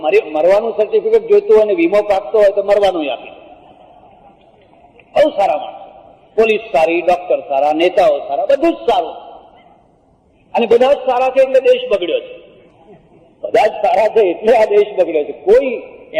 મરવાનું સર્ટિફિકેટ જોઈતું હોય ને વીમો પાકતો હોય તો મરવાનું આપી દે. બહુ સારા માણસો. પોલીસ સારી, ડોક્ટર સારા, નેતાઓ સારા, બધું જ સારું. અને બધા જ સારા છે એટલે દેશ બગડ્યો છે. બધા જ સારા છે એટલે આ દેશ બગડ્યો છે. કોઈ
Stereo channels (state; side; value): identical; both; correlation 1.00